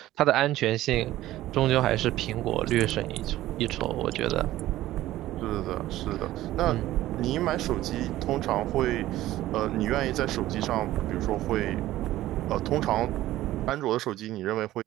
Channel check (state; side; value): quieter; left; 15.1 dB